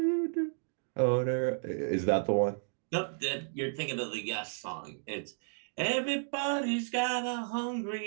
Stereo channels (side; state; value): left; silent; digital silence